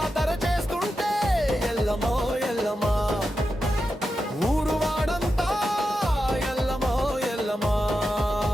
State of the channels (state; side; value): normal; both; correlation 0.89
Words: చేస్తుంటే ఎల్లమ్మ ఎల్లమ్మ ఊరు వాడంతా ఎల్లమ్మ ఎల్లమ్మ